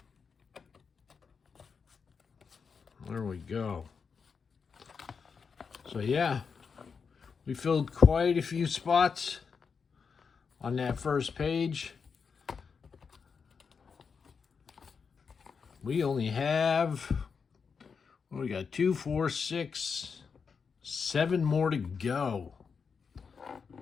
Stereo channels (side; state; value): right; quieter; 5.8 dB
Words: There we go. So yeah, we filled quite a few spots on that first page. We only have, we got 2, 4, 6, 7 more to go.